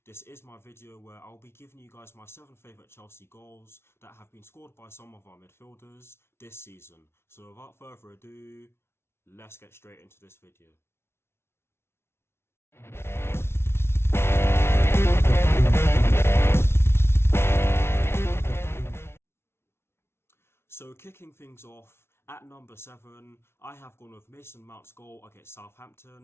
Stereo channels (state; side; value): late; right; 0.12 ms